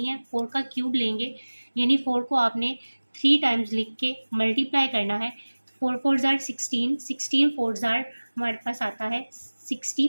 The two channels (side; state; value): both; inverted; correlation -1.00